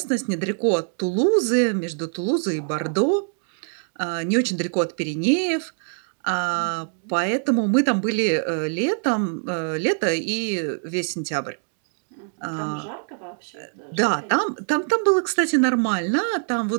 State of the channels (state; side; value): silent; left; 63 dB below the other